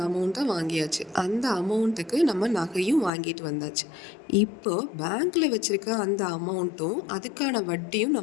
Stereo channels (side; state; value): right; drops out; at 3.1 s